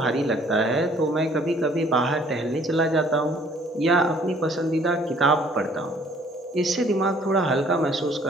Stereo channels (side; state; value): both; normal; correlation 0.58